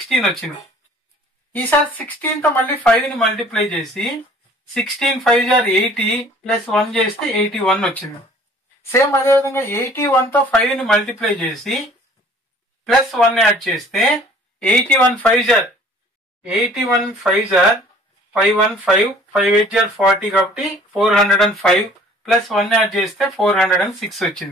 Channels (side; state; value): both; normal; correlation 0.52